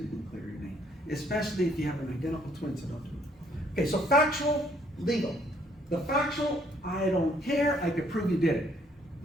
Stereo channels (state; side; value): normal; both; correlation 0.65